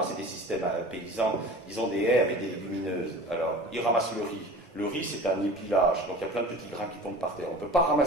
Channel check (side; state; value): both; normal; correlation 0.39